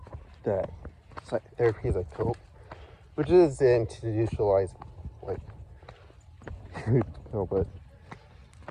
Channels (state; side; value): identical; both; correlation 1.00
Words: that therapy is a cope, which is the institutionalized, like, no, but